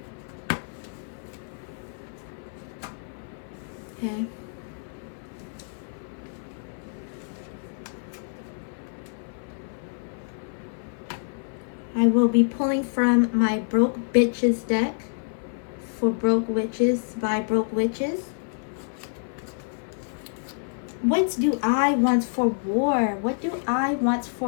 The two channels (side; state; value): right; silent; 56 dB below the other